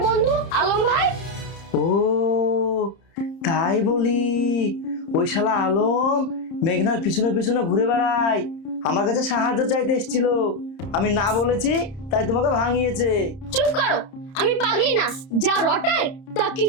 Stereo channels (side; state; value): right; late; 30 ms